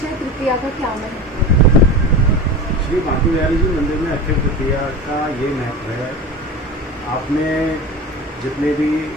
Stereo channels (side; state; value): both; normal; correlation 0.30